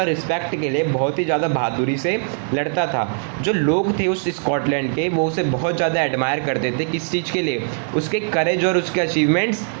रिस्पेक्ट के लिए बहुत ही ज़्यादा बहादुरी से लड़ता था। जो लोग थे उस स्कॉटलैंड के वो उसे बहुत ज़्यादा एडमायर करते थे। किस चीज़ के लिए? उसके करेज और उसके अचीवमेंट्स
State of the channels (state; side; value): silent; left; 65 dB below the other